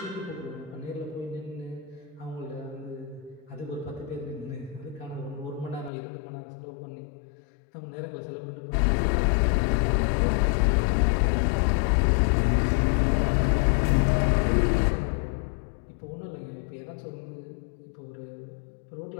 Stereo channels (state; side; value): drops out; right; at 5.9 s